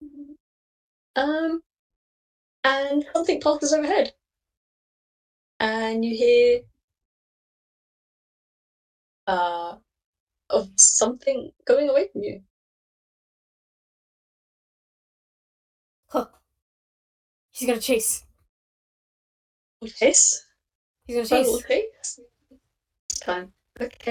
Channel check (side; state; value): both; identical; correlation 1.00